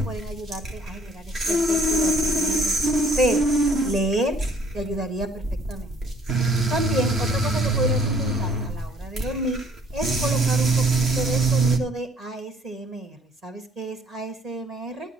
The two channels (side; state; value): both; normal; correlation 0.60